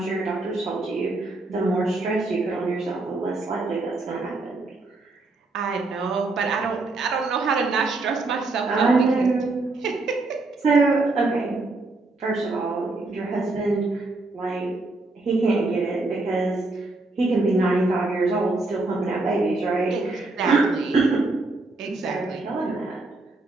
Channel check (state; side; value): quieter; left; 3.2 dB